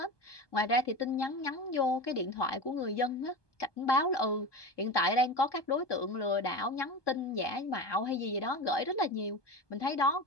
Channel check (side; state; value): right; late; 1.2 ms